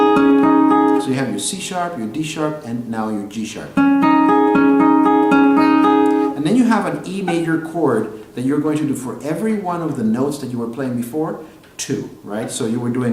So you have your C sharp, your D sharp, and now your G sharp. And then you have an E major chord that you're going to do for every one of the notes that you were playing before, 2, right? So you were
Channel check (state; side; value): identical; both; correlation 1.00